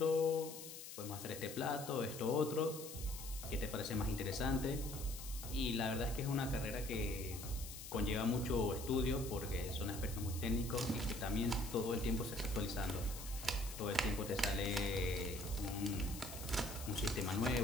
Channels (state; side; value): noise; left; hiss, 11 dB below the sound